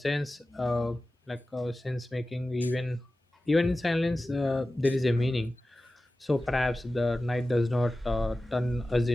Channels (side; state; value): both; normal; correlation 0.95